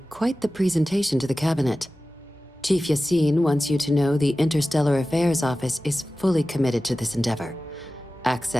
quite the presentation to the Cabinet. Chief Yassine wants you to know the Interstellar Affairs Office is fully committed to this endeavor,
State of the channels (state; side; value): normal; both; correlation 0.95